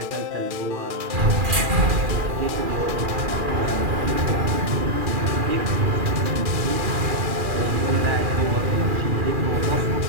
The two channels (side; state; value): left; late; 2.4 ms